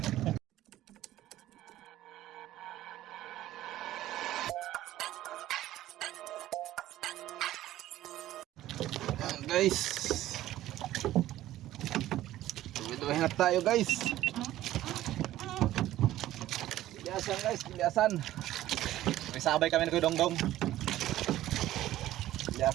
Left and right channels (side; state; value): left; quieter; 14.2 dB